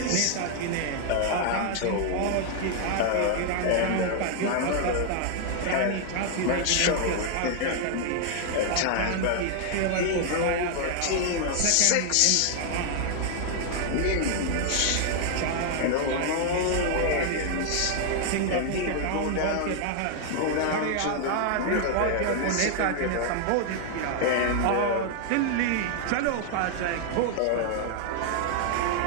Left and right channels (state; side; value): different; both; correlation 0.00